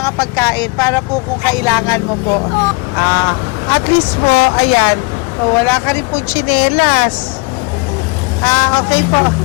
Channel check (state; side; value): quieter; right; 30.1 dB